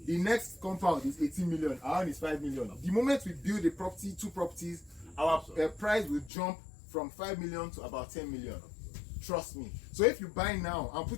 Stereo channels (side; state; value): right; drops out; at 6.3 s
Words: the next compound is 18 million, our own is 5 million. The moment we build a property, 2 properties, our price will jump from 5 million to about 10 million. Trust me. So if you buy now and